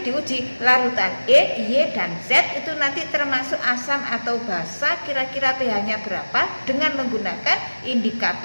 diuji larutan X, Y, dan Z itu nanti termasuk asam atau basa, kira-kira pH-nya berapa dengan menggunakan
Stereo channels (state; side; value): inverted; both; correlation -1.00